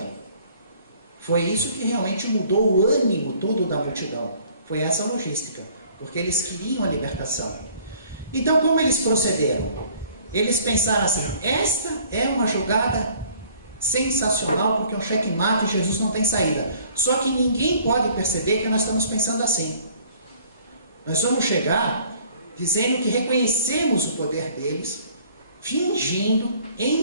Foi isso que realmente mudou o ânimo todo da multidão. Foi essa logística, porque eles queriam a libertação. Então, como eles procederam? Eles pensaram assim, esta é uma jogada sensacional, porque é um checkmate e Jesus não tem saída. Só que ninguém pode perceber que nós estamos pensando assim. Nós vamos chegar dizendo que reconhecemos o poder deles, fingindo,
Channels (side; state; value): both; inverted; correlation -0.56